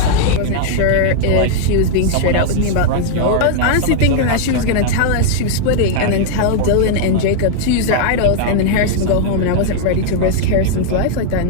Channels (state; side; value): different; both; correlation -0.01